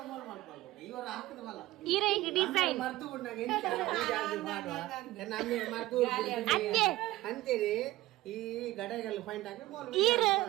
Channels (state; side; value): quieter; left; 16.9 dB